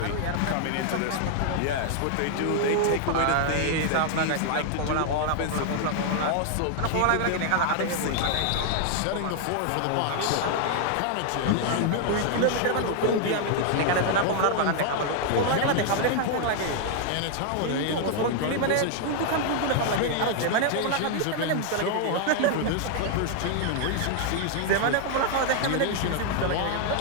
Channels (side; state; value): both; different; correlation 0.00